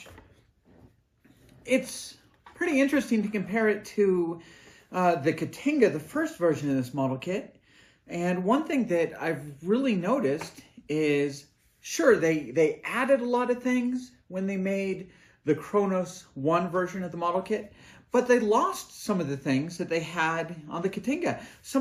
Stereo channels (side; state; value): both; identical; correlation 1.00